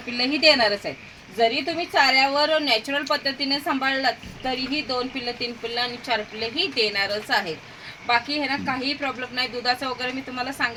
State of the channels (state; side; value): identical; both; correlation 1.00